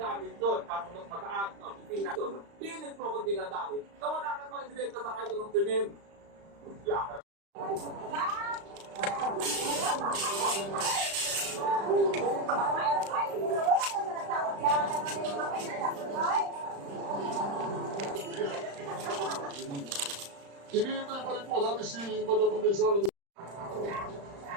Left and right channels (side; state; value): left; late; 35 ms